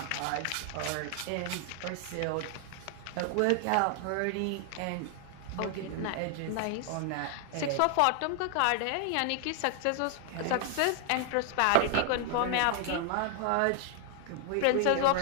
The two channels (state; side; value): different; both; correlation 0.00